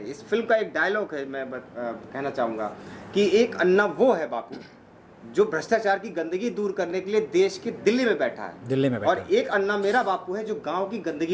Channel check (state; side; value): identical; both; correlation 1.00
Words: इस फिल्म का एक डायलॉग है, मैं कहना चाहूँगा कि एक अन्ना वो है बापू जो भ्रष्टाचार की गंदगी दूर करने के लिए देश के दिल्ली में बैठा है, और एक अन्ना मेरा बापू है जो गांव की